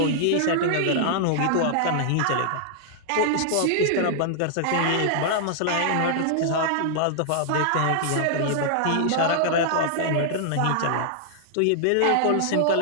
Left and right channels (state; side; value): different; both; correlation -0.01